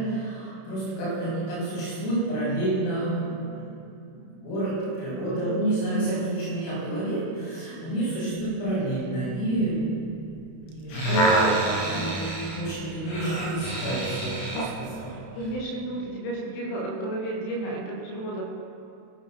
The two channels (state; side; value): late; right; 31 ms